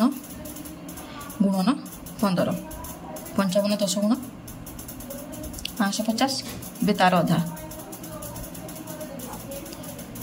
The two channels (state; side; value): identical; both; correlation 1.00